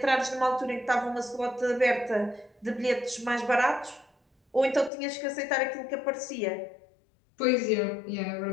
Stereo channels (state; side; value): drops out; right; at 4.9 s